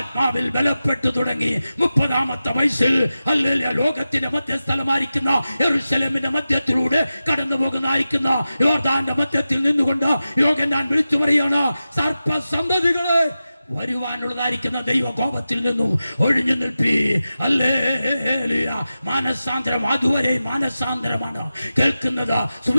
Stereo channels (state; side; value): inverted; both; correlation -0.94